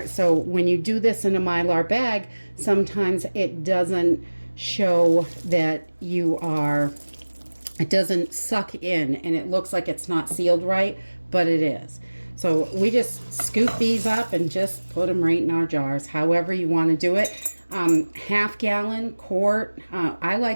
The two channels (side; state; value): both; inverted; correlation -1.00